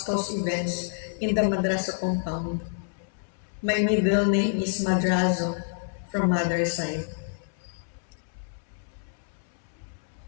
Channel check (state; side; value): silent; right; 59 dB below the other